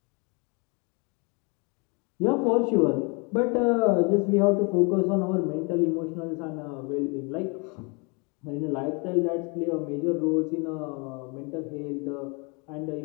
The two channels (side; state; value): right; quieter; 32.0 dB